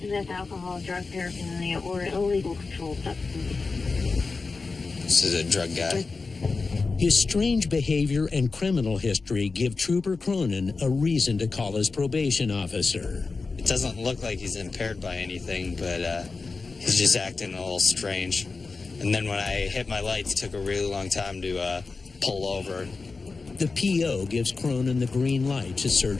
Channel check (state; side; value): quieter; right; 4.2 dB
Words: alcohol, drug paraphernalia, or illegal controlled substances. This is a drug guy. His strange behavior and criminal history give Trooper Cronin a reason to call his probation officer. It doesn't look like he's impaired by anything, but he's just acting a little strange. And then when I hit my lights, it took a really long time to pull over. The PO gives Cronin the green light to